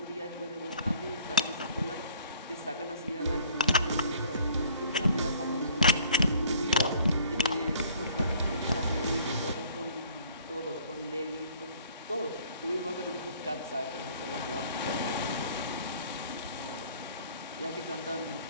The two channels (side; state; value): both; inverted; correlation -0.55